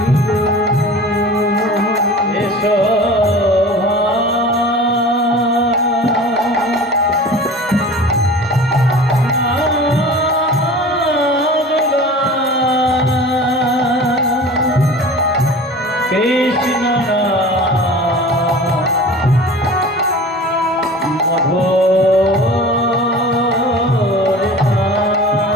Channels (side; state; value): both; normal; correlation 0.39